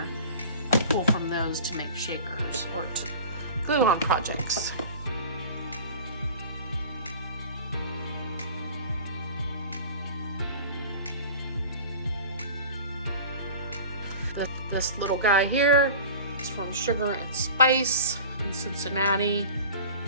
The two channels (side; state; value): both; inverted; correlation -0.39